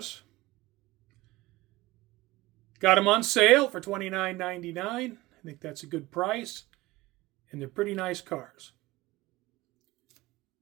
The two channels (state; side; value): quieter; left; 19.3 dB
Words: Got them on sale for $29.99. I think that's a good price. And they're pretty nice cars.